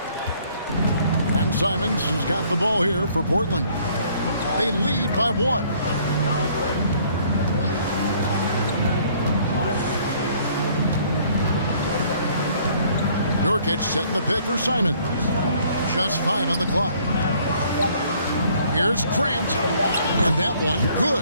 And Simons has got the ball here for Portland. They lead by 1. Nurkic setting the pick for Simons. Just 5 on the clock. Here's Grant. And that one,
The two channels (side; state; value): both; inverted; correlation -0.61